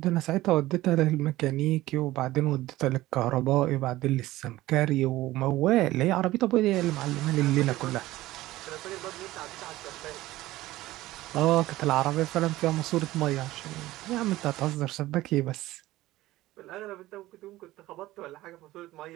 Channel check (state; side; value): quieter; left; 16.8 dB